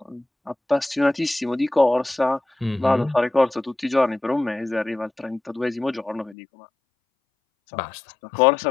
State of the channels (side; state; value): right; drops out; at 6.4 s